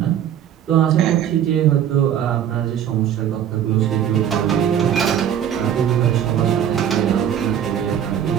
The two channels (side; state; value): left; quieter; 9.6 dB